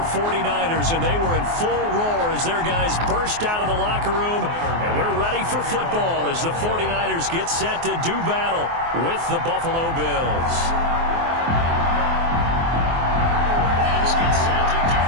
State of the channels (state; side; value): late; left; 24 ms